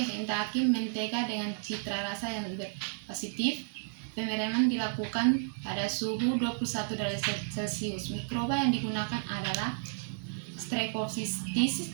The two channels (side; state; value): left; silent; digital silence